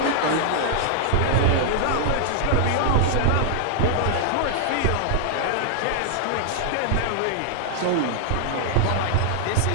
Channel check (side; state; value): both; different; correlation -0.01